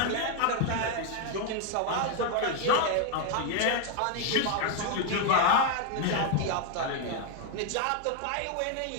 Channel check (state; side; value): different; both; correlation 0.00